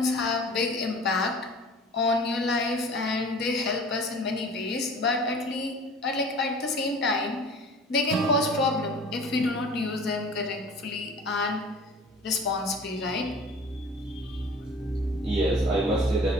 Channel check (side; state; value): both; normal; correlation 0.43